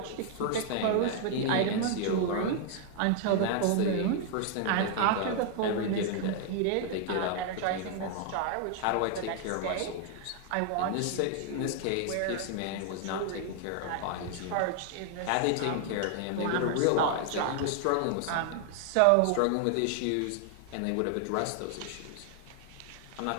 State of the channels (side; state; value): both; different; correlation 0.00